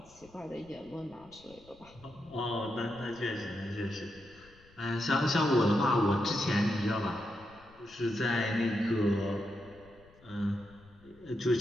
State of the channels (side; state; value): left; noise; rumble, 26 dB below the sound